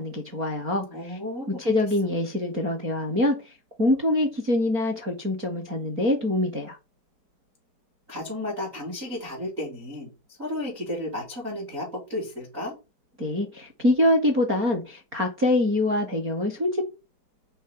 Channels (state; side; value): late; left; 4.3 ms